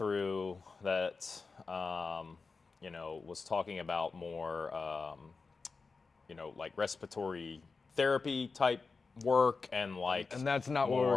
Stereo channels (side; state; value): right; quieter; 4.4 dB